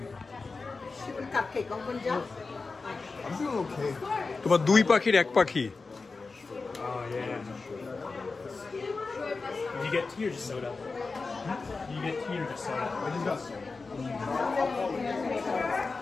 কাপকেক কোন যা I'm doing okay. তোমার দুই পাখির এক পাখি। Oh yeah. You get tea or just soda? You get tea or just soda? I just got some.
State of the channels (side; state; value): right; quieter; 4.1 dB